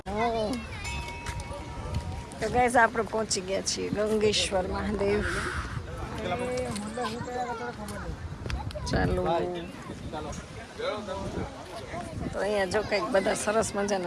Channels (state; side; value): identical; both; correlation 1.00